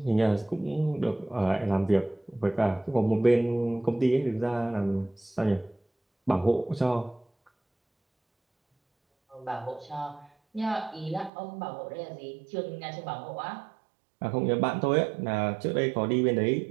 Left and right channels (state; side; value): drops out; left; at 11.3 s